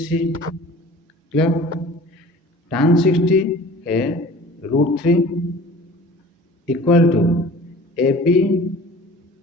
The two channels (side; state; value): both; normal; correlation 0.44